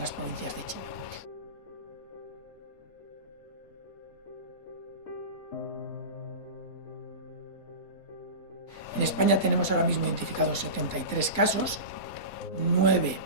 provincias de China. En España tenemos ahora mismo identificados 73 casos, 9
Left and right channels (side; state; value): right; late; 4.2 ms